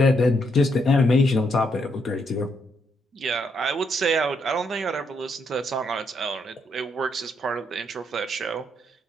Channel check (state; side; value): normal; both; correlation 0.76